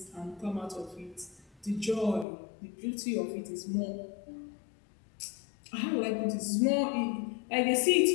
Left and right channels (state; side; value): drops out; right; at 2.2 s